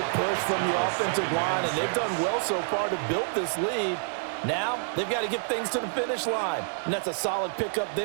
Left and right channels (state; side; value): silent; left; digital silence